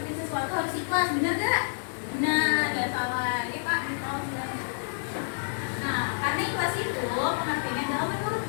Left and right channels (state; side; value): silent; right; digital silence